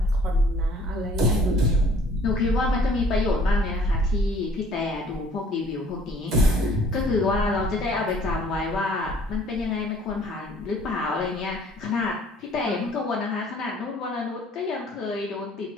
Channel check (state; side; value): normal; both; correlation 0.56